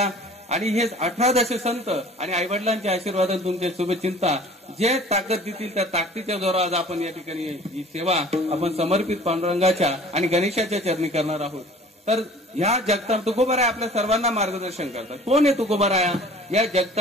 आणि हे 18 संत आणि आईवडिलांच्या आशीर्वादाने तुमचे शुभचिंता जे ताकद देतील त्या ताकदीच्या जोरावर आज आपण या ठिकाणी ही सेवा आपण समर्पित पांडुरंगाच्या आणि गणेशाच्या चरणी करणार आहोत. तर ह्या जगता तुकोबाराया आपल्या सर्वांना मार्गदर्शन करतात. कोण आहे तुकोबाराया? या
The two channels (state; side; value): normal; both; correlation 0.48